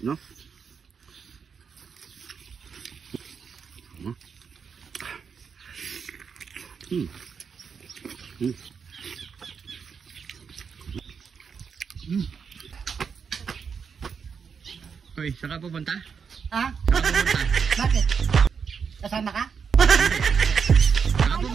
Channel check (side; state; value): left; quieter; 6.3 dB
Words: no? Hoy, saan ka pupunta? Ha? Saan ka pupunta? Bakit? Kasama ka? Saan ka